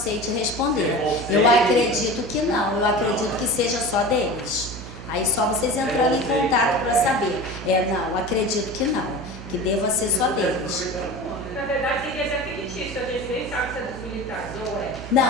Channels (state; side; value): noise; right; hum, 12 dB below the sound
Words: te responder. Eu acredito que não. Eu acredito que seja só deles. Aí só vocês entrando em contato para saber. Não, acredito que não. Que deva ser só deles. Na verdade, tem que ser fictício, a gente nem sabe se é dos militares ou é.